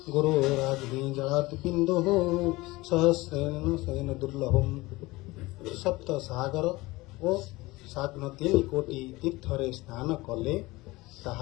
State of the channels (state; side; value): quieter; right; 20.9 dB